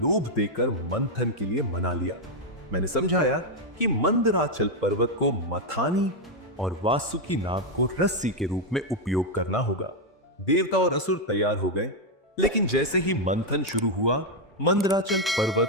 देकर मंथन के लिए मना लिया। मैंने समझाया कि मंदराचल पर्वत को मथानी और वासुकी नाग को रस्सी के रूप में उपयोग करना होगा। देवता और असुर तैयार हो गए, लेकिन जैसे ही मंथन शुरू हुआ, मंदराचल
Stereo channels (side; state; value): both; normal; correlation 0.02